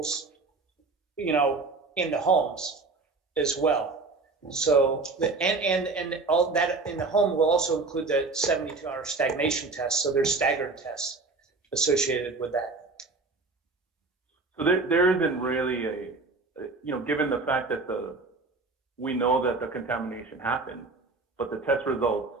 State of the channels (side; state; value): left; quieter; 3.8 dB